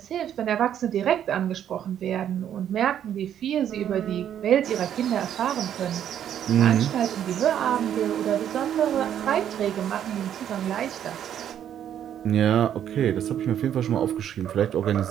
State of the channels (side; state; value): left; quieter; 10.0 dB